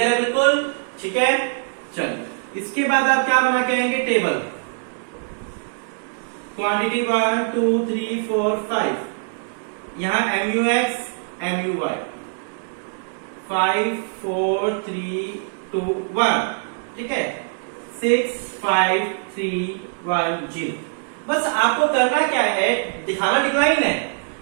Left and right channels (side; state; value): left; silent; digital silence